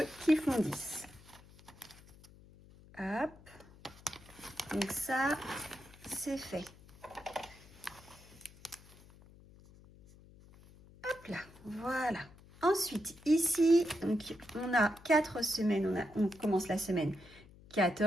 qui font 10. Hop. Donc ça, c'est fait. Hop là, voilà. Ensuite, ici, donc, on a 4 semaines. On commence la semaine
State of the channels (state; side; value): noise; left; hum, 23 dB below the sound